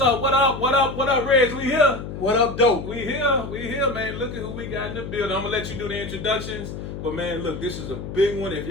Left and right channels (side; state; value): left; noise; hum, 8 dB below the sound